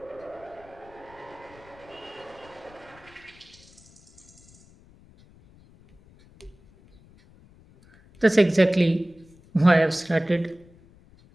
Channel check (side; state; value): left; noise; rumble, 26 dB below the sound